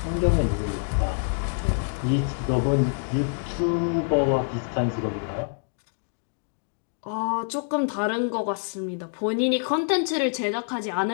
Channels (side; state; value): right; silent; 61 dB below the other